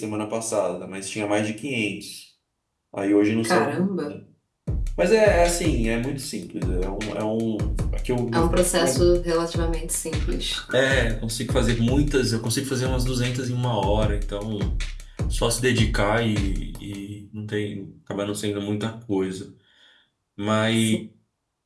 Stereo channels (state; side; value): identical; both; correlation 1.00